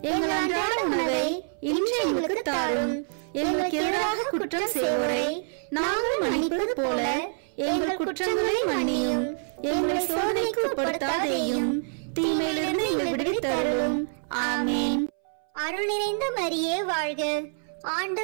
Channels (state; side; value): silent; left; 60 dB below the other